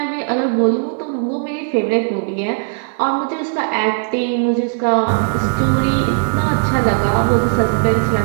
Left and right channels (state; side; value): silent; left; digital silence